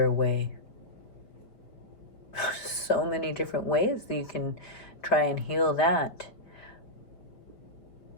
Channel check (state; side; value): late; right; 5.1 ms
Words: way. So many different ways that you can try and heal that,